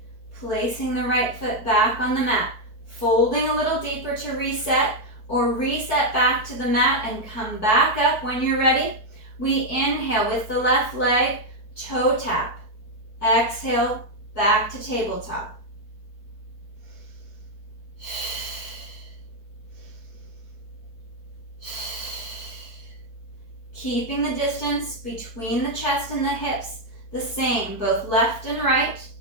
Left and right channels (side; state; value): right; late; 4.5 ms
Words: placing the right foot back on the mat, folding a little deeper to reset, or reset back to the mat and come back up when you're ready. We inhale with the left leg, toe tap. Exhale, back to tabletop. Keeping the distance between the chest and the hips the same, both left and right.